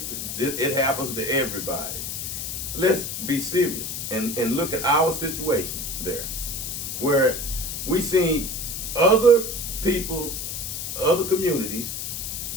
happens to everybody. Let's be serious and look at our situation there, where we see other people, other communities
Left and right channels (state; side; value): noise; left; hiss, 5 dB below the sound